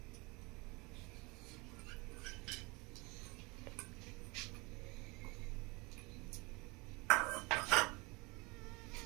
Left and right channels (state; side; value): quieter; left; 26.8 dB